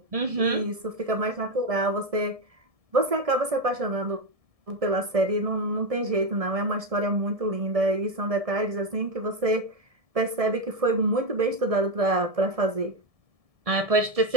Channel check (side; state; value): left; late; 1.7 ms